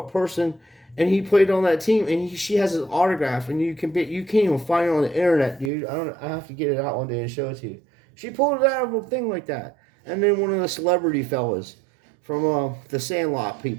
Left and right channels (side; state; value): left; drops out; at 5.7 s